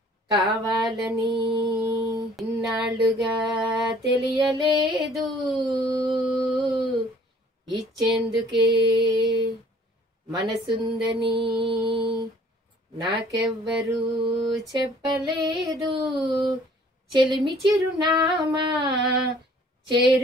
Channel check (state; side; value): normal; both; correlation 0.55